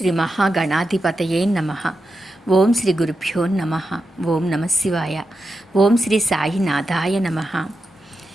మహాగణాధిపతయే నమ. ఓం శ్రీ గురుభ్యో నమ. ఓం నమ శివాయ. ఓం శ్రీ సాయినాథాయ నమ.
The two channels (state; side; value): normal; both; correlation 0.88